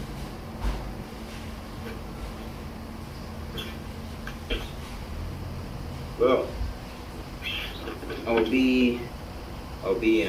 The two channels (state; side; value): identical; both; correlation 1.00